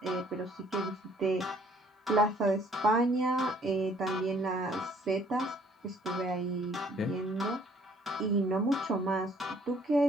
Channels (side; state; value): both; normal; correlation 0.60